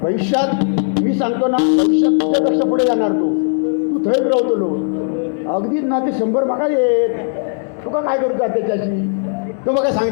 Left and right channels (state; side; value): silent; right; digital silence